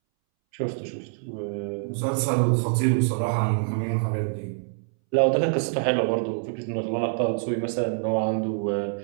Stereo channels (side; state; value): left; silent; 61 dB below the other